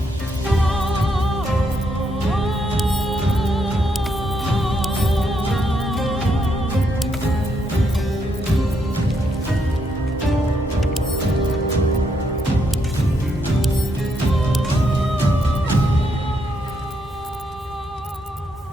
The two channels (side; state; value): both; normal; correlation 0.77